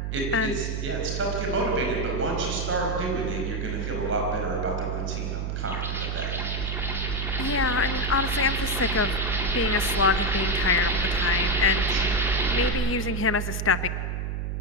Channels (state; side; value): noise; right; hum, 2 dB below the sound